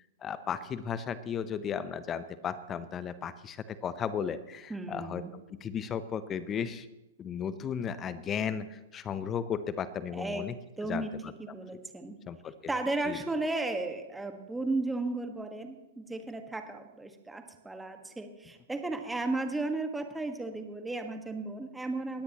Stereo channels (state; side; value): normal; both; correlation 0.65